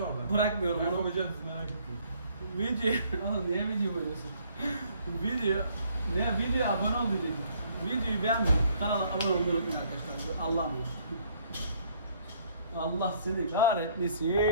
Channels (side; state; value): both; inverted; correlation -0.63